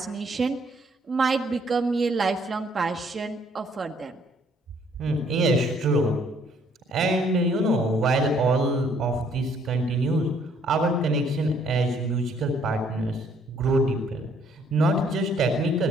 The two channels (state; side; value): normal; both; correlation 0.64